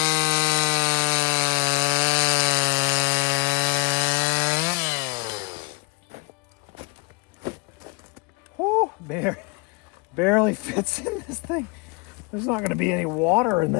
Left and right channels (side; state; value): right; quieter; 27.7 dB